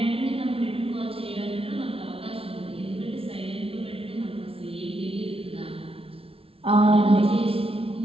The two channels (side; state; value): left; late; 0.27 ms